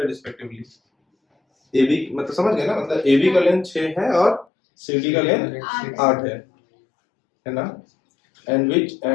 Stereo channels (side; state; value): right; drops out; at 4.5 s